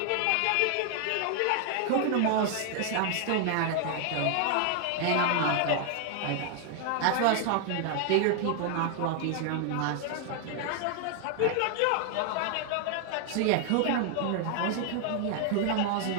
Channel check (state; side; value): different; both; correlation 0.00